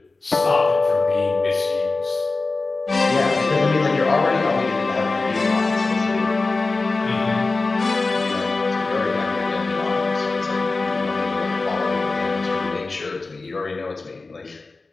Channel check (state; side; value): quieter; right; 3.6 dB